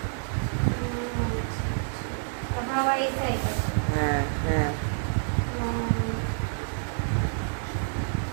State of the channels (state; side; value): silent; left; digital silence